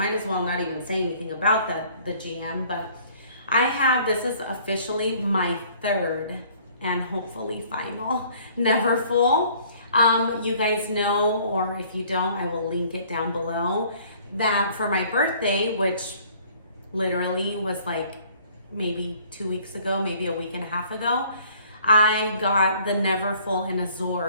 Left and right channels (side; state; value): both; inverted; correlation -0.56